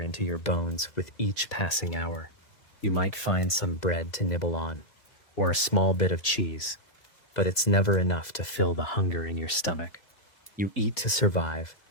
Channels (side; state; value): right; late; 2.0 ms